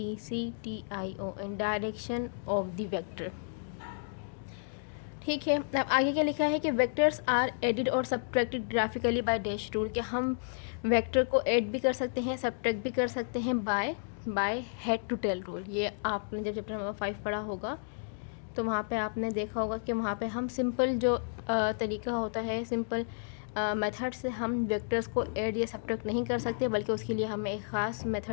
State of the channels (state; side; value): silent; right; digital silence